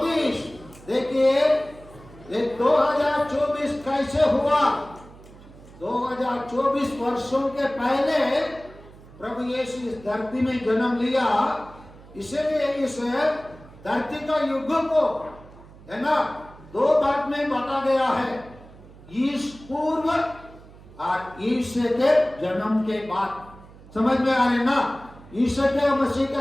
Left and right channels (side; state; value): right; noise; hum, 21 dB below the sound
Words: देखिए ये 2024 कैसे हुआ? 2024 वर्षों के पहले प्रभु यीशु इस धरती में जन्म लिया, इसलिए इस धरती का युग को, है ना, दो भाग में बांटा गया है, ईश पूर्व और ईश्वर के जन्म के बाद। समझ में आ रहे ना? ईश्वर के मसीह